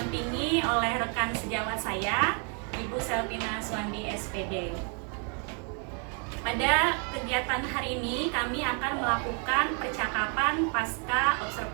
oleh rekan sejawat saya, Ibu Selvina Suwandi SPD. Pada kegiatan hari ini kami akan melakukan percakapan pasca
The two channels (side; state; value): left; quieter; 38.9 dB